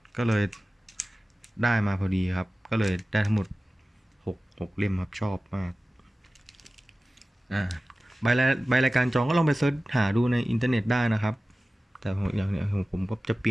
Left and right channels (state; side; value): normal; both; correlation 0.96